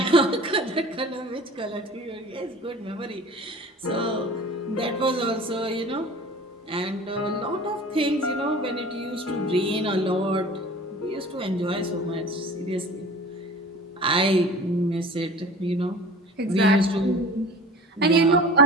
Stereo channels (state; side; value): normal; both; correlation 0.41